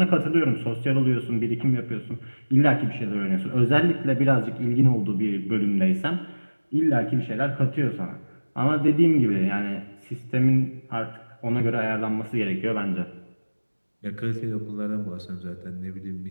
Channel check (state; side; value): inverted; both; correlation -1.00